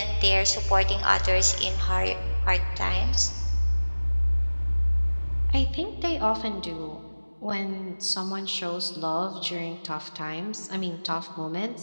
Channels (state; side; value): inverted; both; correlation -1.00